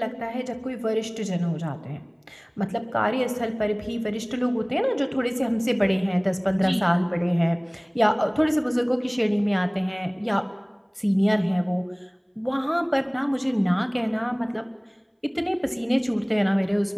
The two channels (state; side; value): identical; both; correlation 1.00